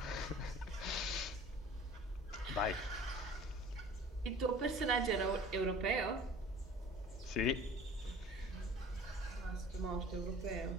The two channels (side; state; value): both; normal; correlation 0.45